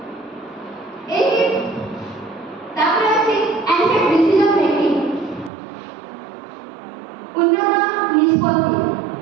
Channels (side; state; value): left; drops out; at 5.5 s